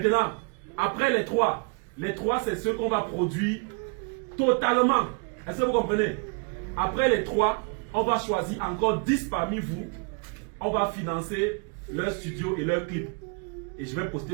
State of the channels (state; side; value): quieter; left; 37.0 dB